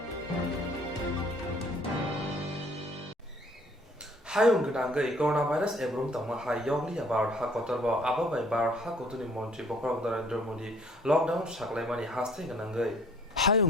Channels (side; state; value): both; normal; correlation 0.58